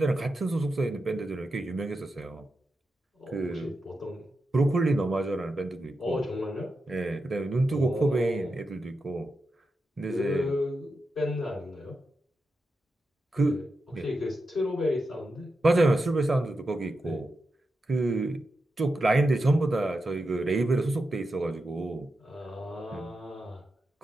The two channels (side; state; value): both; normal; correlation 0.88